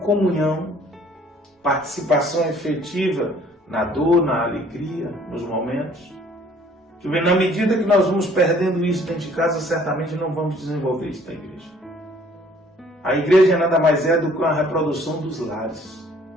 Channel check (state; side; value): normal; both; correlation 0.58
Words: participação efetiva na dor, na alegria, nos momentos? Que na medida que nós vamos perdendo isso dentro de casa, certamente não vamos desenvolver isso na igreja. A igreja nada mais é do que uma reprodução dos lares.